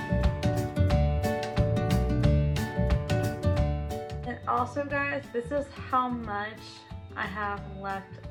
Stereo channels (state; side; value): identical; both; correlation 1.00